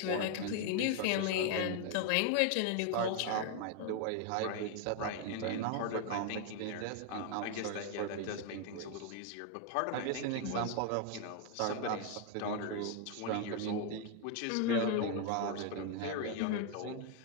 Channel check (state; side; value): different; both; correlation 0.00